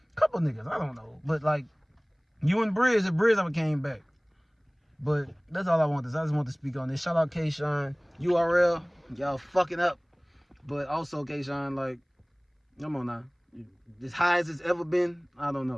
couple niggas, I don't know. But like, you and Briz, if Briz ever came back. But that's all I want. I just want to speak on this. Shout out Kshine, URL, y'all fucking up. But also Kshine, like, come on now. As high as it's ever been, I don't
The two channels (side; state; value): both; identical; correlation 1.00